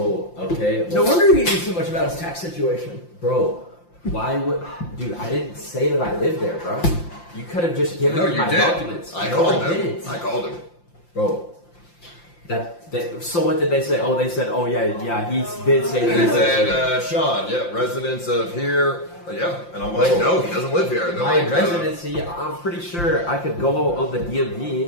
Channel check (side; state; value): right; late; 5.8 ms